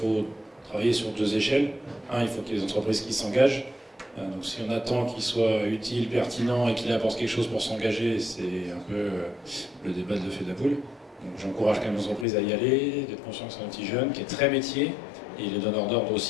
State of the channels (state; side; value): drops out; right; at 12.2 s